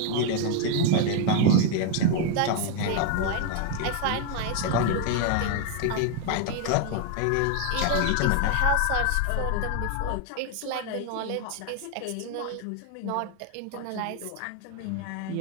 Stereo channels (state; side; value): different; both; correlation 0.01